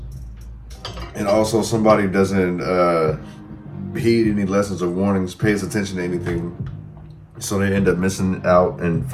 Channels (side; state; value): both; identical; correlation 1.00